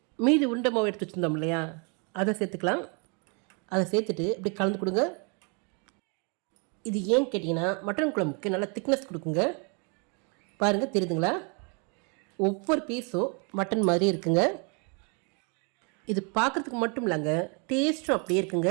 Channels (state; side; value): quieter; left; 35.4 dB